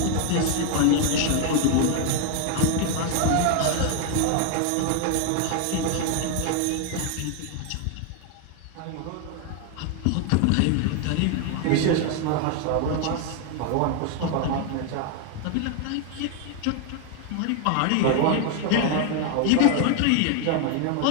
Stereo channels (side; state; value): both; different; correlation 0.00